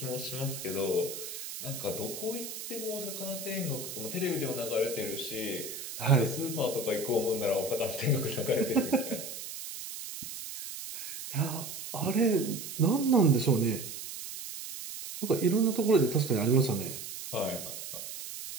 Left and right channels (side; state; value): right; noise; hiss, 9 dB below the sound